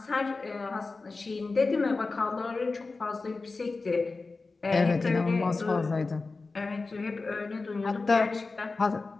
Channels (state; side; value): quieter; right; 3.8 dB